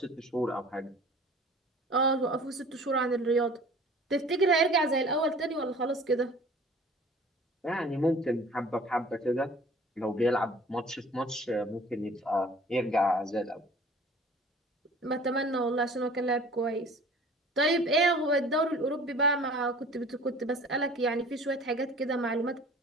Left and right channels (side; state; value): both; normal; correlation 0.47